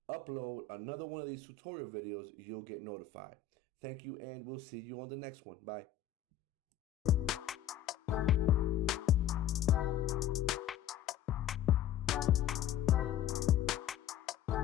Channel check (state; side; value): quieter; right; 9.2 dB